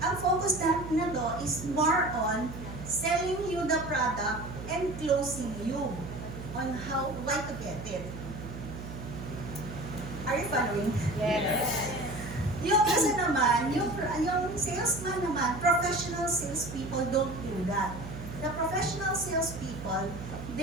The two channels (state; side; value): noise; right; hum, 10 dB below the sound